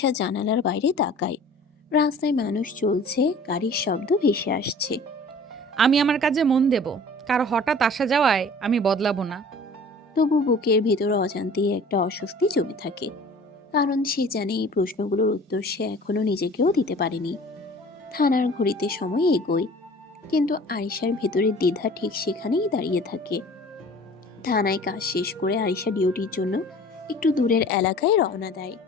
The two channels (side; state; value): both; normal; correlation 0.46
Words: জানালার বাইরে তাকায়। রাস্তায় মানুষ চলছে, গাড়ির শব্দ ভেসে আসছে। আমি আমার কাজে মন দেব, কারো হঠাৎ আসা যাওয়ায় আমি বদলাবো না। তবু বুকের ভেতর অজান্তেই একটা অস্বস্তি জমে থাকে। কারণ সে জানে এই প্রশ্নগুলোর উত্তর সে এখনো নিজেকেও দিতে পারেনি। থানার ঘড়িতে সময় এগোয়, কিন্তু আরিশার ভেতরের দ্বিধা ঠিক সেখানেই দাঁড়িয়ে থাকে। থানায় কাজ শেষ করে আরিশা ডিউটির জন্য একটু দূরের এলাকায় রওনা দেয়।